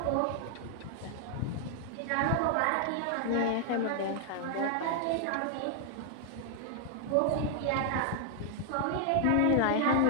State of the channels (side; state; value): both; different; correlation 0.00